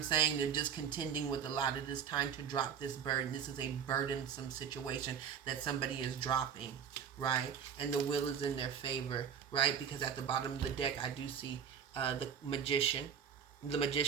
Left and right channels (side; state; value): left; quieter; 7.8 dB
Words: saying. They're just contending with a lot. It is time to drop this burden. This is a burdensome situation that somebody is dropping, right? And the wheel is in their favor, right? Because at the bottom of the deck, I do see the Magician, The